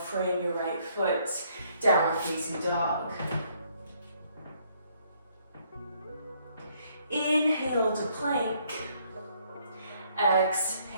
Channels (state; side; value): inverted; both; correlation -0.67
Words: your right foot, downward facing dog. Inhale to plank.